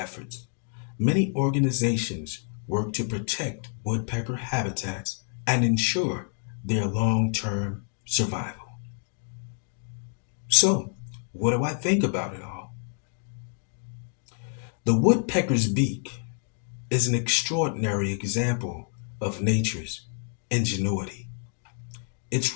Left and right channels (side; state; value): right; silent; 59 dB below the other